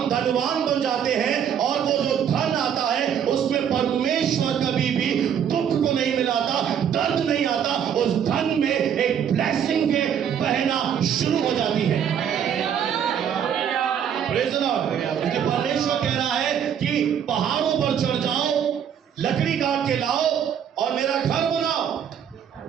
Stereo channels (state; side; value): quieter; left; 8.6 dB